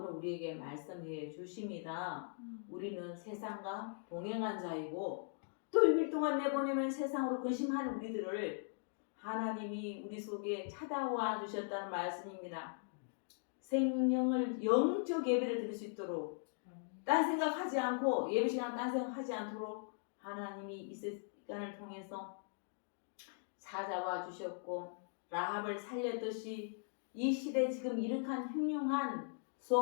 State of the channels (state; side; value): silent; right; digital silence